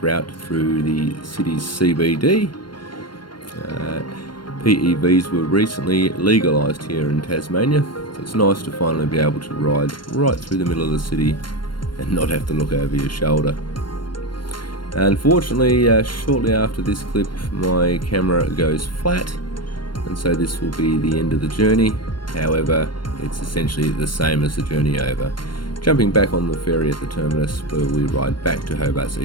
route through the city's CBD. PEVs were recently legalised here in Tasmania, so it's nice to finally be able to ride right through the middle of the city and not have to look over your shoulder. Unfortunately, shortly after this clip, my camera goes flat, and so this will be the end of the journey. However, It's essentially the same as the journey over, jumping back on the ferry at the terminus where we ride back to Hobart's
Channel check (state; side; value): late; right; 0.72 ms